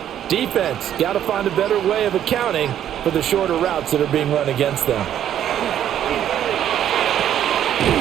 Defense, got to find a better way of accounting for the shorter routes that are being run against them.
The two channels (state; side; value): quieter; left; 10.5 dB